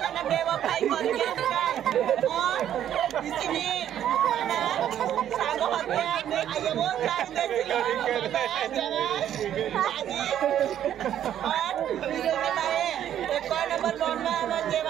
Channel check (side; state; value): left; quieter; 10.6 dB